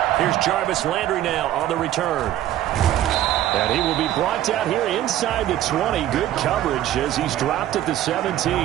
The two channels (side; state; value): left; quieter; 12.9 dB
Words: Here's Jarvis Landry now on the return. And he will be brought down here inside the 20. Good coverage as he's dropped at the 17.